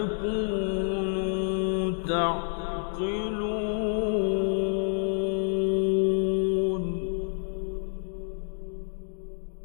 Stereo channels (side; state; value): right; silent; digital silence